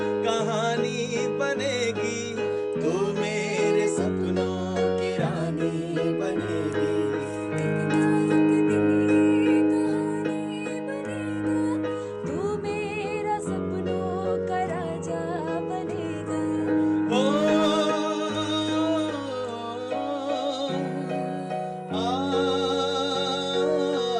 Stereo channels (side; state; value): both; identical; correlation 1.00